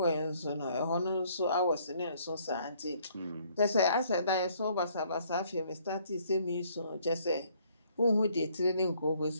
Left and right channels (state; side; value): inverted; both; correlation -0.64